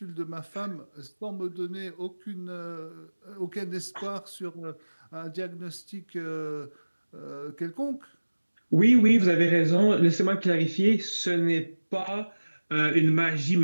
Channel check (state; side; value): inverted; both; correlation -1.00